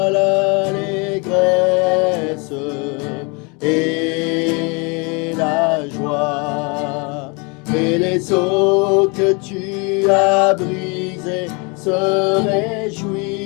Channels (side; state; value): right; quieter; 30.8 dB